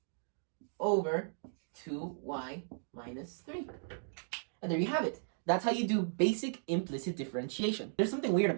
over 2y minus 3. And there you have it. That's how you do basic implicit differentiation. There's something weird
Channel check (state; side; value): silent; left; digital silence